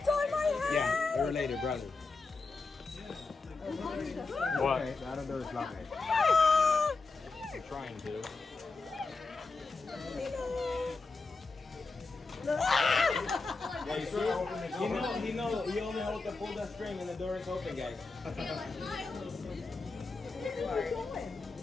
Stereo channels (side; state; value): right; quieter; 3.9 dB